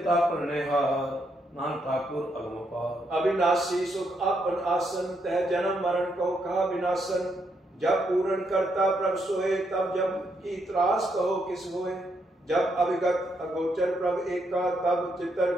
पर हार नान ठाकुर अगम पार। अविनाशी सुख आपन आसन तह जन्म मरण को कहा विनाशन। जब पूर्ण करता प्रभ सोए तब जब की त्रास कहो किस होए। जब अविगत अगोचर प्रभ एका तब चितर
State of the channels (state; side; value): normal; both; correlation 0.77